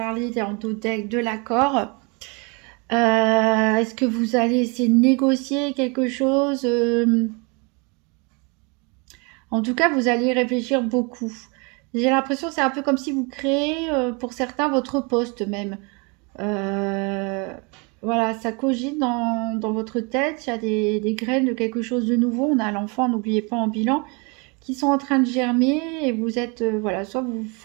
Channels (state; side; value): quieter; left; 31.4 dB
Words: dans le deck de l'accord? Est-ce que vous allez essayer de négocier quelque chose? En tout cas, vous allez y réfléchir beaucoup. J'ai l'impression que c'est un peu comme si vous créez, pour certains, votre poste même. Voilà, ça cogite dans votre tête. Il y a des graines de quelque chose de nouveau. On a l'enfant, n'oubliez pas, en bilan, qui sont en train de germer. Et vous êtes, voilà, soit vous